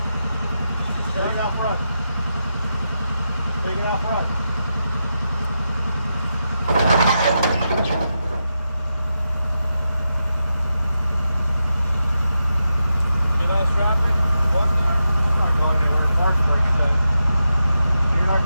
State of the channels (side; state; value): both; inverted; correlation -0.88